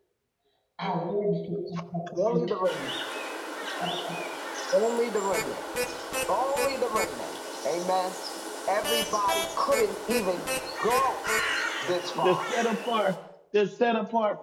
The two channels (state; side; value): identical; both; correlation 1.00